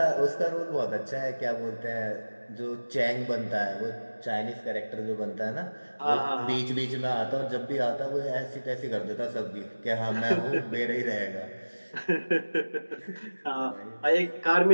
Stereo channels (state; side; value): inverted; both; correlation -1.00